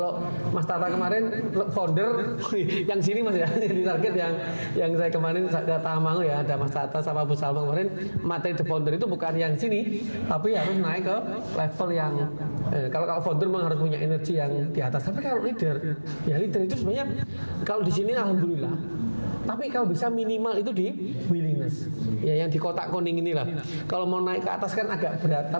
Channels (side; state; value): both; inverted; correlation -1.00